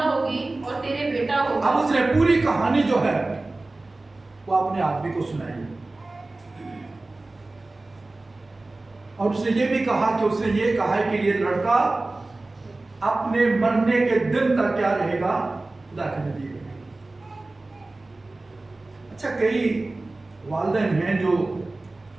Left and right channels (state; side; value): quieter; left; 3.1 dB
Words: होगी और तेरे बेटा होगा। अब उसने पूरी कहानी जो है वो अपने आदमी को सुनाई और उसने ये भी कहा कि उसने ये कहा है कि ये लड़का अपने मरने के दिन तक क्या रहेगा, खुदा के नबी रहेगा। अच्छा, कई वालिदैन हैं जो